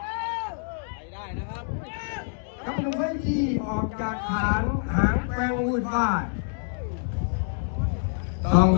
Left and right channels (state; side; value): silent; right; digital silence